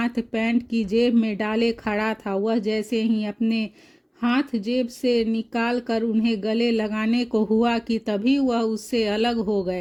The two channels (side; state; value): both; identical; correlation 1.00